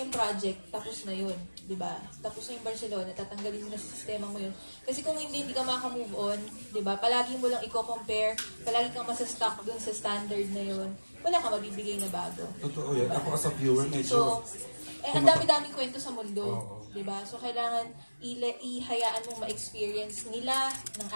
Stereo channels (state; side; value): inverted; both; correlation -1.00